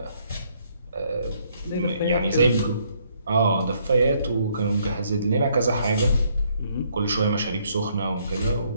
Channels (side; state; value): both; inverted; correlation -0.69